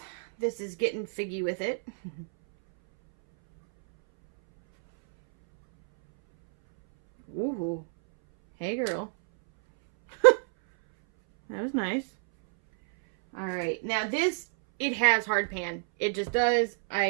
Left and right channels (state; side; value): silent; left; 60 dB below the other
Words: this is Getting Figgy With It. Ooh. Hey, girl. That was nice. All right, now this, it has hard pan. It just does.